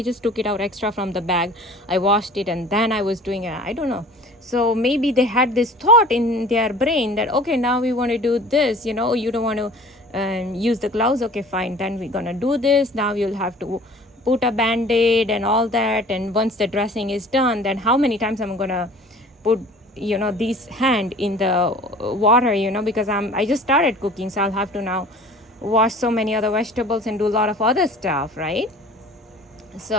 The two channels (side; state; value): both; normal; correlation 0.46